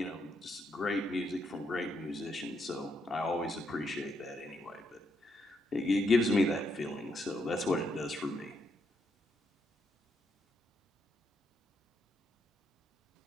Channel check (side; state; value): both; normal; correlation 0.78